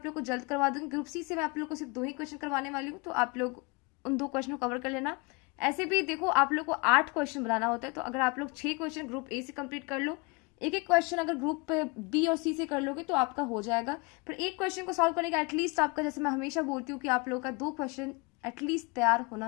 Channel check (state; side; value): quieter; right; 29.0 dB